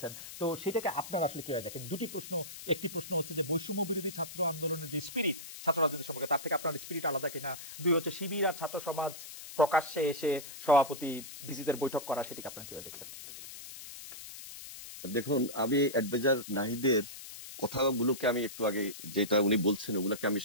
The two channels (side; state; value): left; noise; hiss, 12 dB below the sound